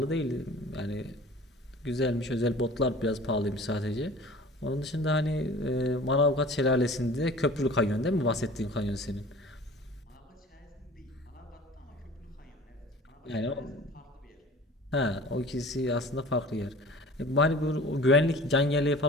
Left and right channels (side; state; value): both; normal; correlation 0.43